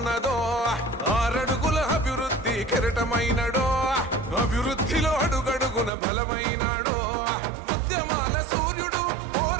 6 అడుగుల అభివృద్ధి కెరటమైనడో అభివృద్ధిలో అడుగడుగున బలమైనాడో ఉద్యమాల సూర్యుడు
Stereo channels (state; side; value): drops out; left; at 5.9 s